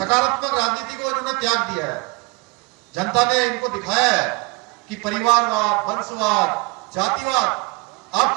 राजनीति को इन्होंने त्याग दिया है। जनता ने इनको दिखाया है कि परिवारवाद, वंशवाद, जातिवाद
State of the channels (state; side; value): quieter; left; 26.6 dB